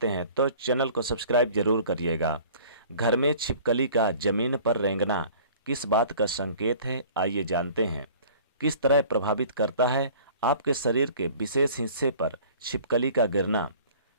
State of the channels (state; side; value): inverted; both; correlation -0.48